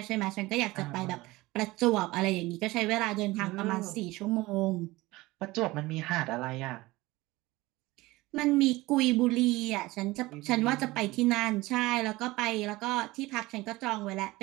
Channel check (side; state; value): left; quieter; 20.1 dB